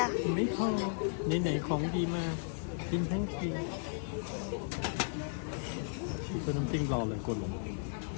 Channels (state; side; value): silent; right; 54 dB below the other